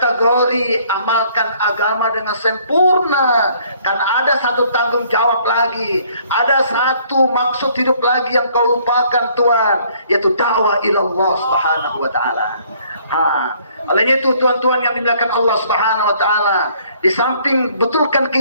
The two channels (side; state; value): both; inverted; correlation -0.62